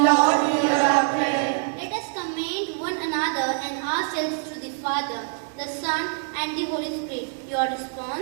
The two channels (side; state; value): left; silent; 62 dB below the other